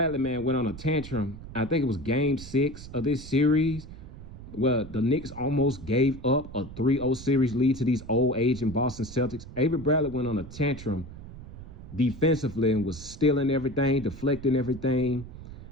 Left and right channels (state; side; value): noise; right; rumble, 14 dB below the sound